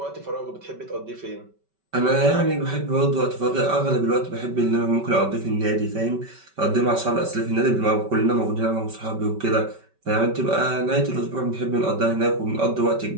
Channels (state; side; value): late; left; 5.2 ms